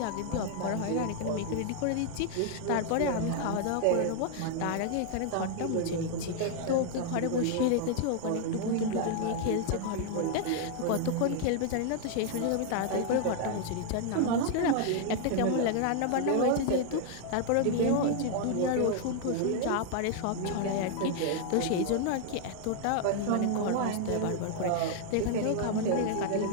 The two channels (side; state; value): both; different; correlation 0.00